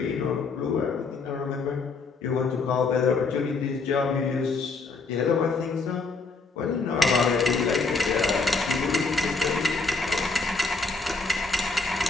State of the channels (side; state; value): right; quieter; 4.1 dB